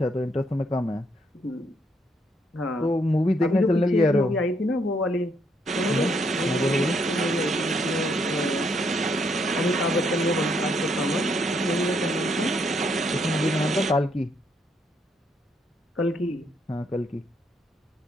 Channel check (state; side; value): normal; both; correlation 0.73